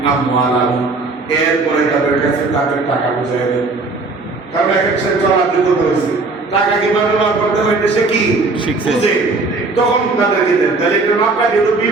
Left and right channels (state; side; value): quieter; left; 3.6 dB